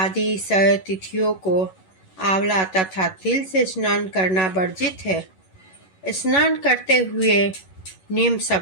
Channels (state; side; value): late; right; 11 ms